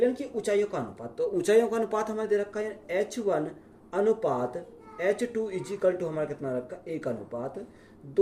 की ऊंचाइयों का अनुपात। तो ऊंचाइयों का अनुपात हमें दे रखा है h1 अनुपात h2 इज इक्वल टू हमारा कितना रखा?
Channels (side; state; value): both; identical; correlation 1.00